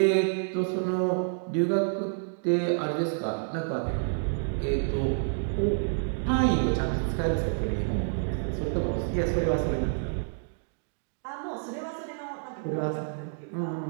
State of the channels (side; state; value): left; silent; digital silence